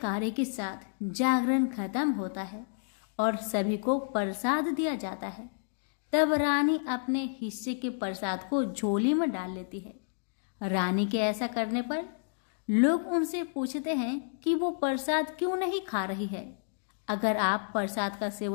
के साथ जागरण खत्म होता है और सभी को प्रसाद दिया जाता है। तब रानी अपने हिस्से के प्रसाद को झोली में डाल लेती है। रानी के ऐसा करने पर लोग उनसे पूछते हैं कि वो प्रसाद क्यों नहीं खा रही है। अगर आप प्रसाद का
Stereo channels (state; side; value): silent; right; digital silence